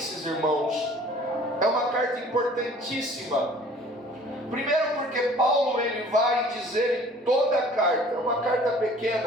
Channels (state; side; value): normal; both; correlation 0.51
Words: irmãos, é uma carta importantíssima. Primeiro porque Paulo ele vai dizer em toda a carta, é uma carta